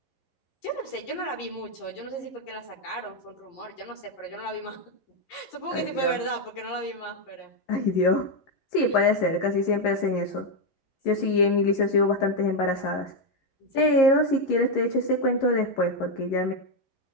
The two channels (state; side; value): late; right; 11 ms